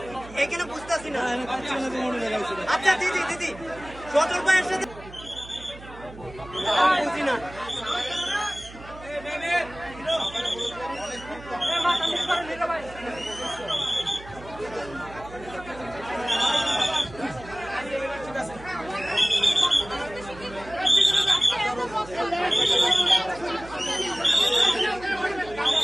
এখানে বুঝতেছি না। আচ্ছা দিদি দিদি সজল ভাইয়ের সাথে বুঝি না।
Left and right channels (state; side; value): noise; right; hum, 17 dB below the sound